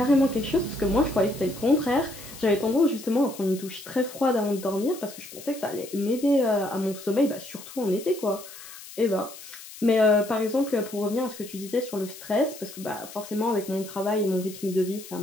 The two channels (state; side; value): noise; left; hiss, 15 dB below the sound